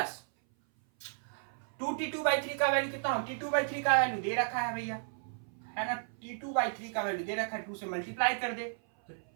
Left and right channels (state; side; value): silent; left; 55 dB below the other